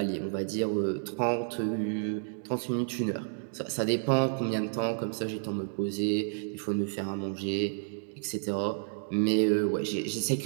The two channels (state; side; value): silent; left; digital silence